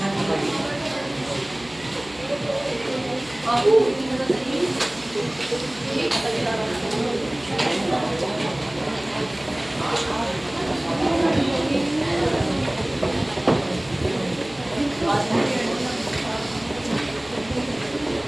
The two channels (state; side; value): noise; right; hum, 22 dB below the sound